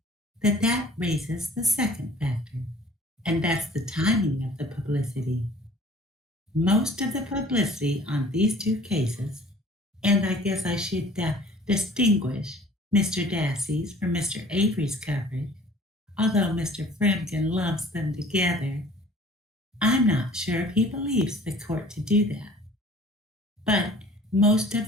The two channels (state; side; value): normal; both; correlation 0.50